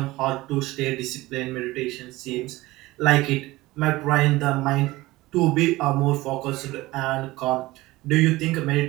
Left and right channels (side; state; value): left; quieter; 19.2 dB